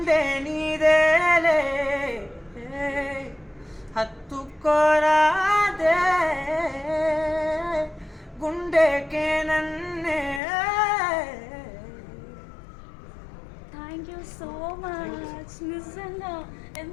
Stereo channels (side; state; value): right; drops out; at 10.4 s